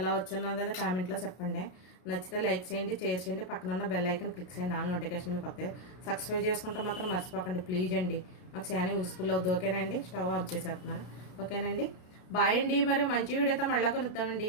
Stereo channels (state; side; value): late; right; 33 ms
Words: వచ్చిన్నది కామెంట్లో చెప్పండి. నచ్చితే లైక్ చేయండి, షేర్ చేయండి, పక్కన బెల్ ఐకన్ క్లిక్ చేయండి. ఆల్ నోటిఫికేషన్ మీకు వస్తాయి. సబ్స్క్రైబ్ చేసుకుంటే మాత్రం మర్చిపోకండి ప్లీజ్ అండి. మాకు చాలా యూస్ఫుల్ అవుతుంది. ఓకేనండి. స్టవ్ ఆఫ్ చేసేస్తున్నాను. ఓకేనండి. బాయ్ అండి. మరి మంచి వీడియోతో మళ్ళీ కలుద్దామండి.